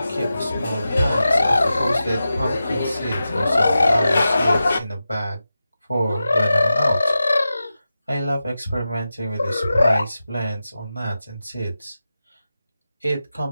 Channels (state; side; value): inverted; both; correlation -0.92